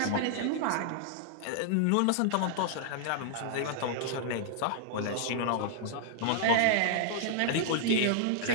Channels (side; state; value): both; different; correlation -0.01